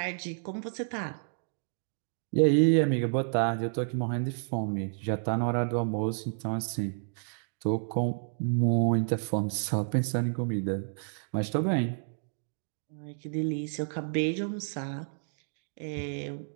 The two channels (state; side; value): silent; left; digital silence